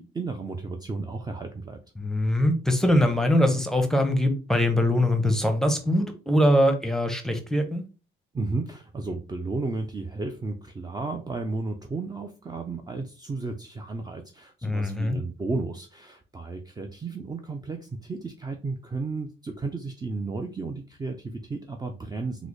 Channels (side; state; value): both; normal; correlation 0.82